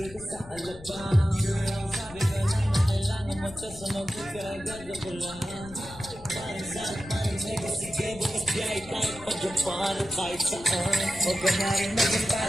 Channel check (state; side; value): noise; left; rumble, 18 dB below the sound